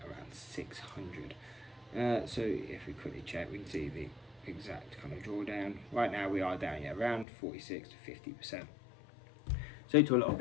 around 600. So if we quickly check, we can see the exact kind of drawdown. Right now we are down at around 46 to 50%. So to a lot of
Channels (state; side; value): drops out; right; at 7.2 s